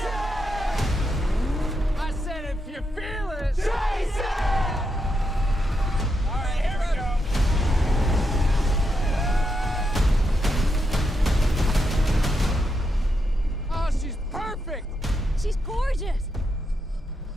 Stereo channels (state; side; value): normal; both; correlation 0.83